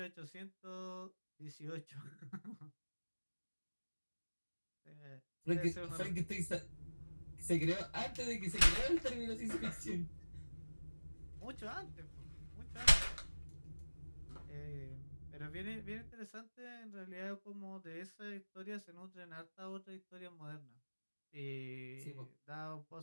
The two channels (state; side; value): inverted; both; correlation -1.00